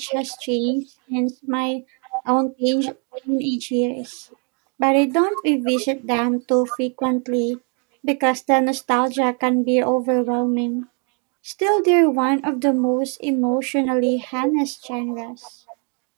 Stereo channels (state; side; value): quieter; left; 38.4 dB